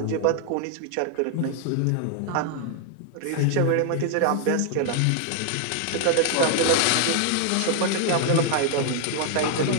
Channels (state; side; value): different; both; correlation 0.00